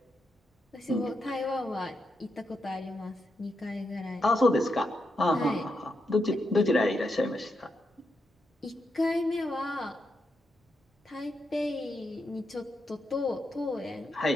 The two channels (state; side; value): normal; both; correlation 0.84